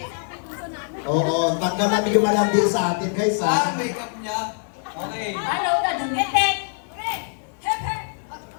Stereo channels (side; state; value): right; silent; 55 dB below the other